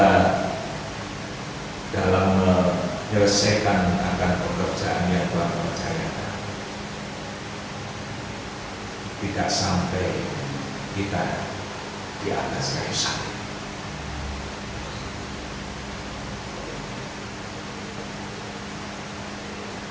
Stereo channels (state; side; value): identical; both; correlation 1.00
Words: dalam menyelesaikan akan pekerjaan yang Tuhan percayakan, tidak sampai kita di atas kayu salib.